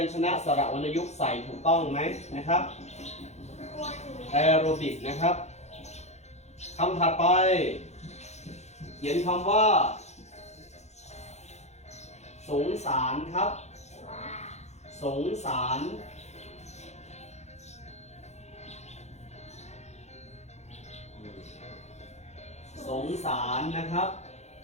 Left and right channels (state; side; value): late; right; 0.32 ms